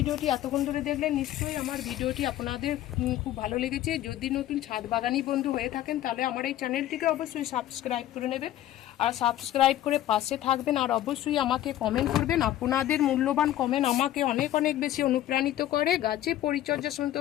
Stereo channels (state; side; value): quieter; right; 13.1 dB